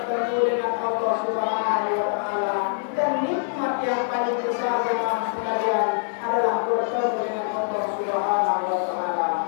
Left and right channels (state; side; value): silent; right; 62 dB below the other